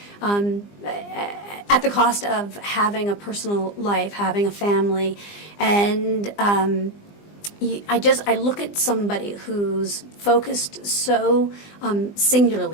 at the cost of having a personal life, having a family, and I look at somebody who's focused so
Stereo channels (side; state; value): right; late; 20 ms